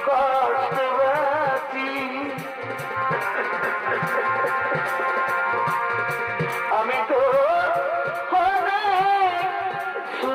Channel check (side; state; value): both; identical; correlation 1.00